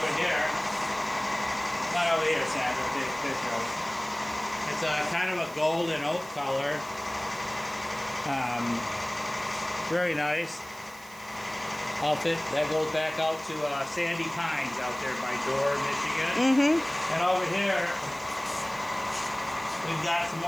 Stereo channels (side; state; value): right; noise; hiss, 20 dB below the sound